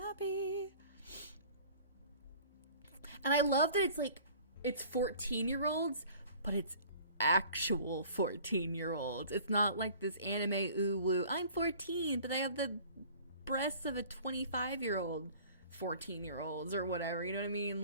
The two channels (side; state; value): both; inverted; correlation -0.48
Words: And I love that it's like, it's 14-year-olds, but it's actual 14-year-olds. It's not like this anime ooh woo. I'm 14, but I have the breasts of a 25-year-old 14-year-olds or whatever. You know what I mean?